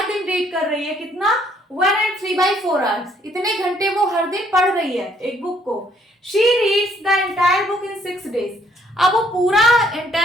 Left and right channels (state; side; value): normal; both; correlation 0.66